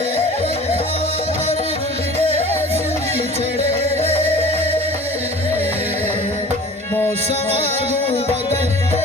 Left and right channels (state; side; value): normal; both; correlation 0.42